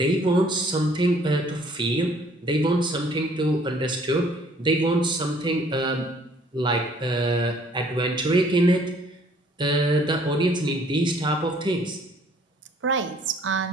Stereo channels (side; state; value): both; normal; correlation 0.59